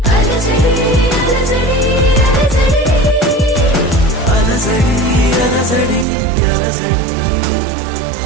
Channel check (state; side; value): drops out; left; at 6.1 s